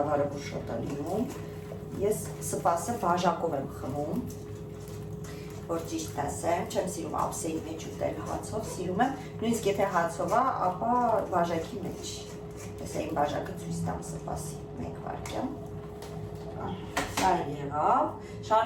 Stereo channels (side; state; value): both; identical; correlation 1.00